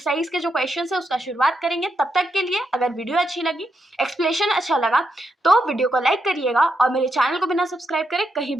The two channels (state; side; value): normal; both; correlation 0.83